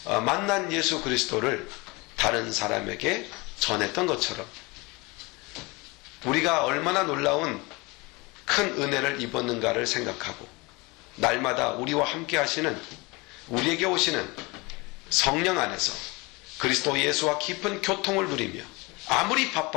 만난 예수 그리스도를 다른 사람에게 전했던 것처럼 우리가 얼마나 놀라운 큰 은혜를 입었는가를 생각하고 날마다 우리와 함께 하시는 우리에게 오시는 성령 안에서 그리스도 예수와 깊은 교통을 누리며 아무리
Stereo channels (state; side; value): quieter; right; 25.5 dB